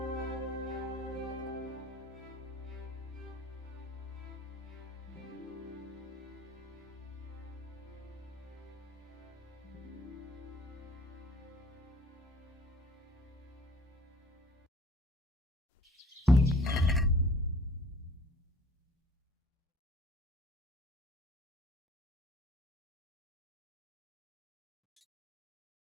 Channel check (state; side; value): normal; both; correlation 0.50